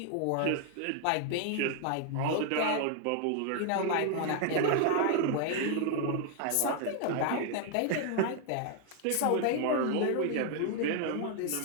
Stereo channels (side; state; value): both; different; correlation 0.00